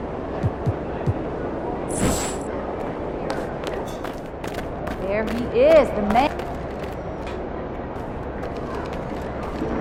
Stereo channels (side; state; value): both; identical; correlation 1.00